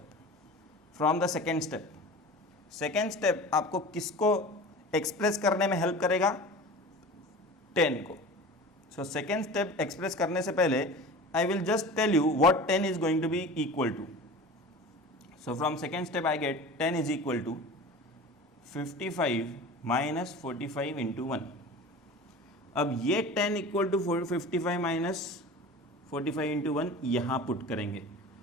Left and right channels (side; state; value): both; normal; correlation 0.36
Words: From the second step आपको किसको express करने में help करेगा? 10 को. सो सेकेंड स्टेप एक्सप्रेस करने से पहले I will just tell you what 10 is going to be equal to. So from second step I get 10 is equal to 55 minus 45 into 1. अब ये 10 इक्वल टू 55 माइनस 45 इंटू 1 यहाँ put करेंगे,